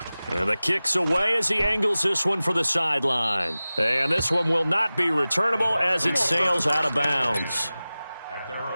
And the kick's away as he angles this one for the sideline. And this one will not be returnable as it sails out of bounds. At their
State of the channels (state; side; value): inverted; both; correlation -0.97